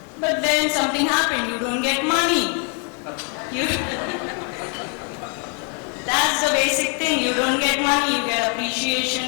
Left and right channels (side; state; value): right; quieter; 39.7 dB